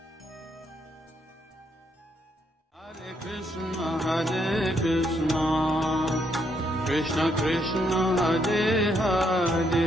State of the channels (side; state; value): both; normal; correlation 0.75